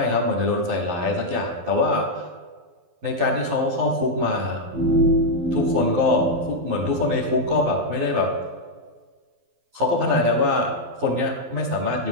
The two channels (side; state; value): left; late; 12 ms